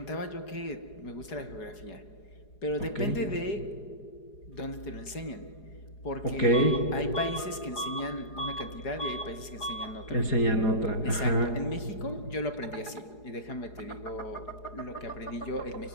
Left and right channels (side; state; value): right; late; 4.8 ms